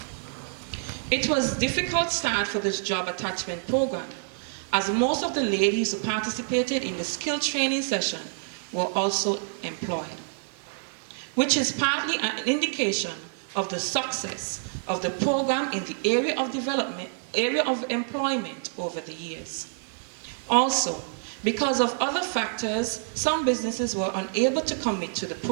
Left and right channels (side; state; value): left; silent; 60 dB below the other